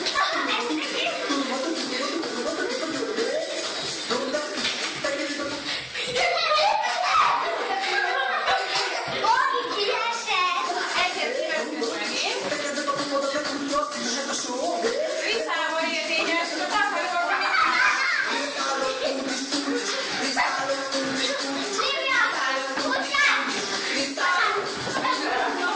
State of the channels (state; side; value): identical; both; correlation 1.00